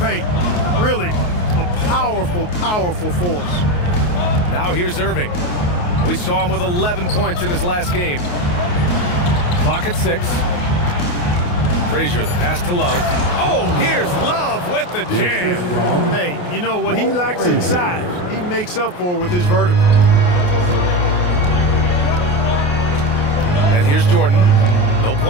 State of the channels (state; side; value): late; right; 28 ms